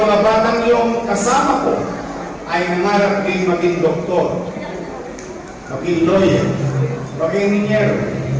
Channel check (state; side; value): identical; both; correlation 1.00